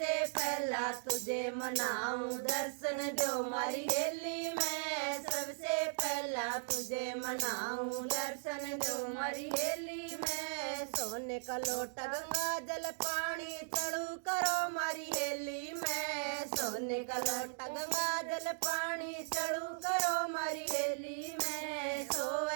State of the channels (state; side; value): silent; left; digital silence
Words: पहला तुझे मनाऊं दर्शन दो मारी हेली में, सबसे पहला तुझे मनाऊं दर्शन दो मारी हेली में। सोने का लोटा गंगा जल पानी चढ़ू करो मारी हेली में, सोने का लोटा गंगा जल पानी चढ़ू करो मारी हेली में।